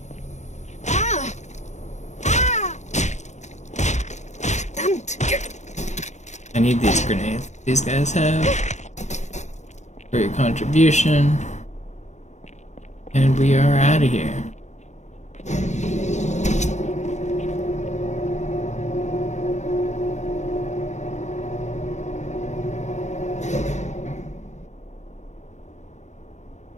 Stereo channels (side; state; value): right; late; 0.34 ms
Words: I need these grenades these guys have for your contribution. And we are out of here.